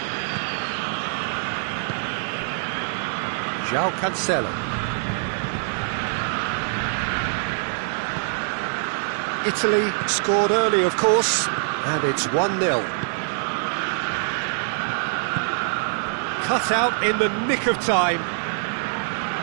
João Cancelo. Italy scored early, of course, and it's 1-0. Cut out in the nick of time.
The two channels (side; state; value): left; silent; digital silence